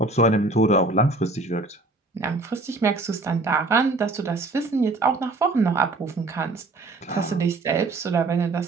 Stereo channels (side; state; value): left; quieter; 3.2 dB